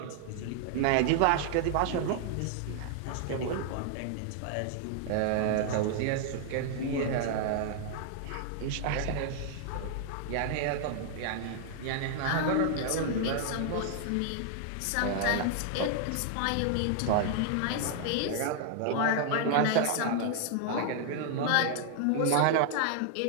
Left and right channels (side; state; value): both; different; correlation 0.00